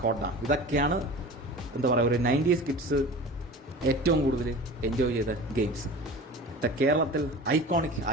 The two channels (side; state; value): both; normal; correlation 0.36